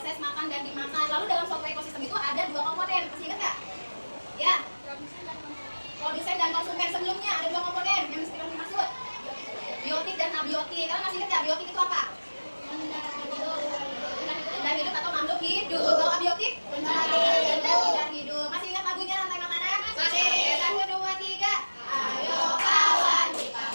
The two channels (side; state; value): both; inverted; correlation -1.00